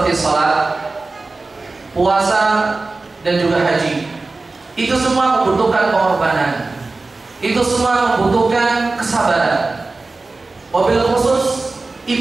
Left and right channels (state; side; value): quieter; left; 3.5 dB